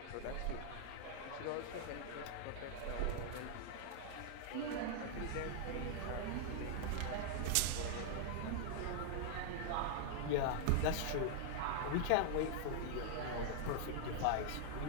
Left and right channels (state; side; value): different; both; correlation -0.01